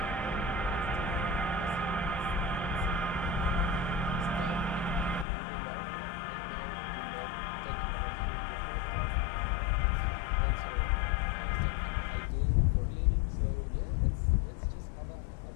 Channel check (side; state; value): right; drops out; at 5.2 s